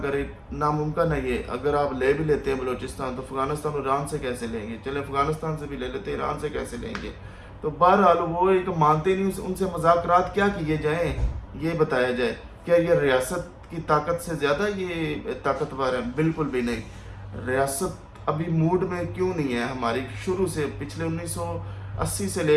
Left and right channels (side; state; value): both; identical; correlation 1.00